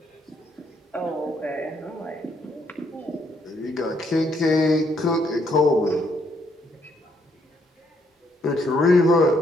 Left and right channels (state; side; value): normal; both; correlation 0.72